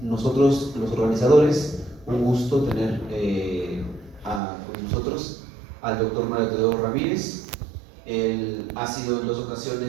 nosotros, los organizadores, un gusto tener con nosotros al doctor Mario Teodoro Ramírez. Él ha sido en 2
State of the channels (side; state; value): left; drops out; at 4.4 s